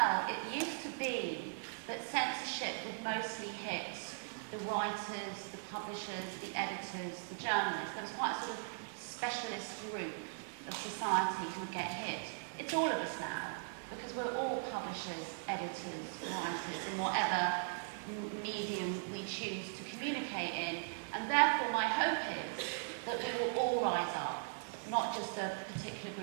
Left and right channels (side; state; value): left; silent; digital silence